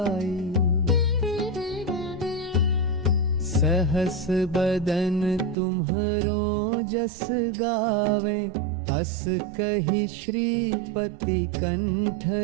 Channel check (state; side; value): drops out; left; at 5.6 s